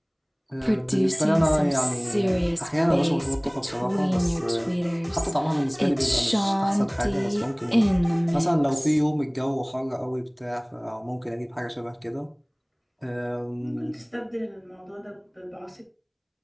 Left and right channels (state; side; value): identical; both; correlation 1.00